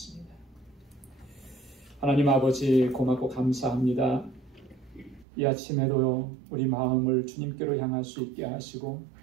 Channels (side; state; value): left; drops out; at 5.2 s